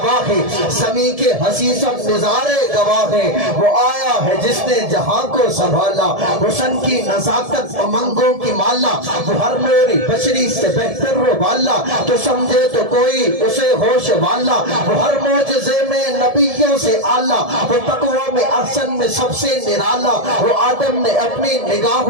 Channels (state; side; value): late; left; 1.7 ms